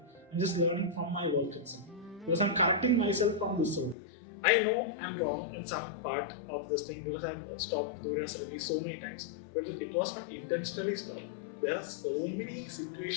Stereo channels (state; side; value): drops out; right; at 4.0 s